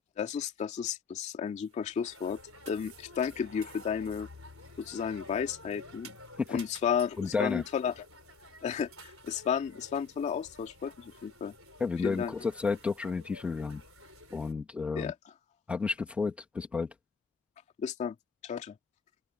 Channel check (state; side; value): quieter; right; 5.8 dB